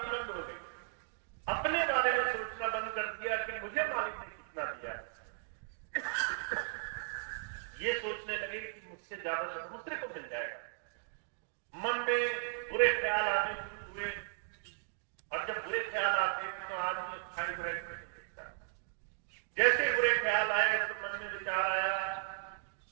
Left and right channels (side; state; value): left; silent; digital silence